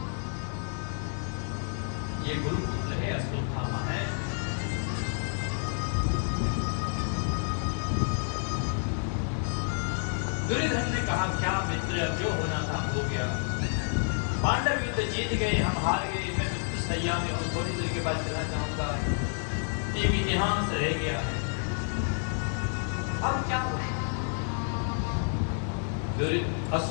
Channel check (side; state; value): right; silent; 58 dB below the other